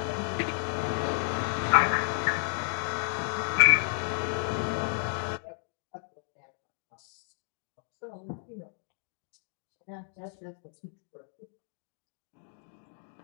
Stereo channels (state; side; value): silent; right; digital silence